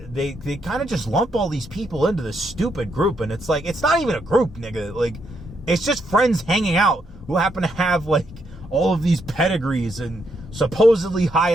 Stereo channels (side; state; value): both; normal; correlation 0.78